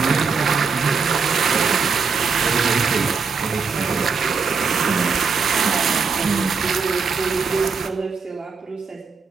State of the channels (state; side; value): quieter; left; 5.2 dB